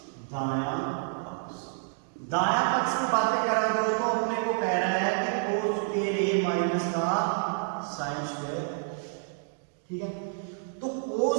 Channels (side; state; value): left; silent; 59 dB below the other